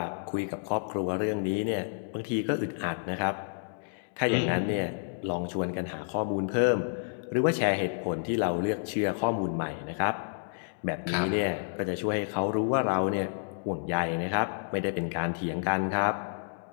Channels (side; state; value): right; silent; digital silence